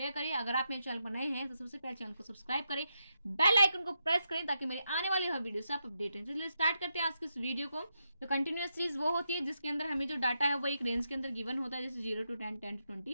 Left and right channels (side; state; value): both; inverted; correlation -0.84